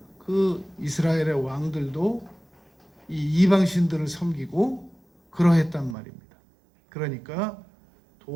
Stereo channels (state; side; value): drops out; left; at 6.0 s